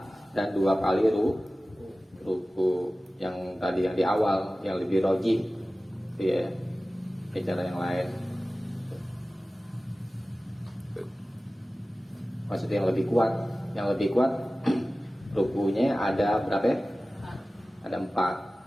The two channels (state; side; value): normal; both; correlation 0.96